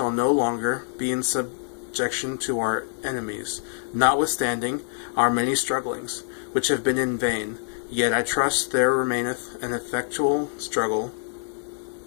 no longer be in subjection to our enemies, notwithstanding our many strugglings, which have been in vain. Yet I trust there remaineth an effectual struggle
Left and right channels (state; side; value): silent; right; digital silence